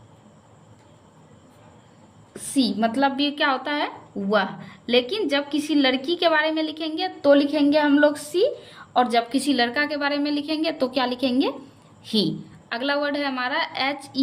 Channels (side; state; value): both; identical; correlation 1.00